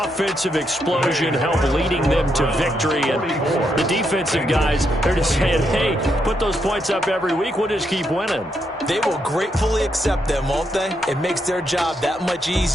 explosion helped leading them to victory. And the defensive guys, they're just saying, hey, put those points up every week. We'll just keep winning. They will gratefully accept them, won't they? It makes their job that much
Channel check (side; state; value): both; normal; correlation 0.79